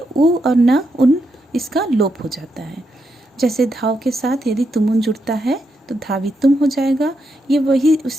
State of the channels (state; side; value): normal; both; correlation 0.82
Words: उ और न, उन, इसका लोप हो जाता है। जैसे धाव के साथ यदि तुमुन जुड़ता है तो धावितुम हो जाएगा। ये वही